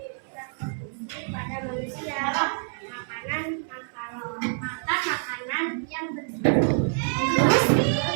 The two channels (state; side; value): silent; left; 60 dB below the other